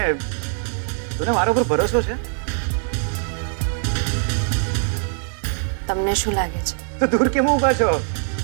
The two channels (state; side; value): silent; left; 57 dB below the other